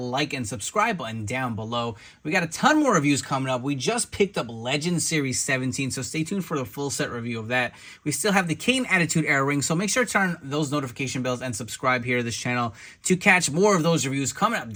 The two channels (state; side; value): identical; both; correlation 1.00